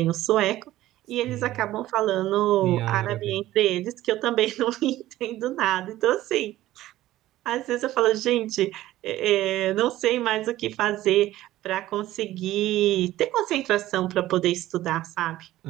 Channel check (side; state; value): left; quieter; 15.1 dB